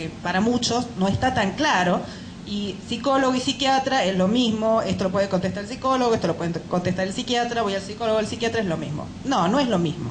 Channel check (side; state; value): both; identical; correlation 1.00